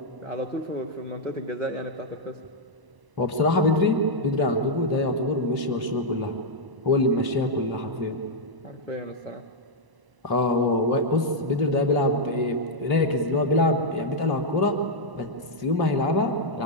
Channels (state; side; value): late; left; 1.0 ms